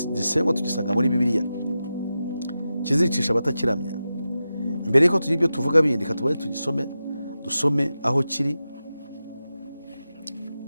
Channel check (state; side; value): inverted; both; correlation -0.92